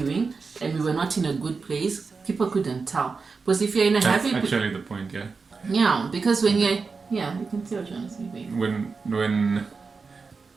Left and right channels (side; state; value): left; quieter; 4.7 dB